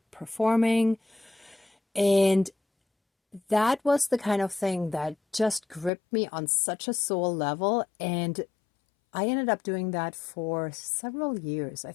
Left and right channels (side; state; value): right; drops out; at 5.9 s